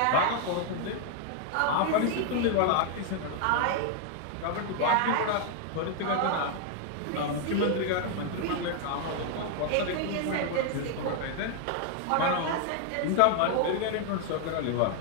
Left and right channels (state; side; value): different; both; correlation 0.00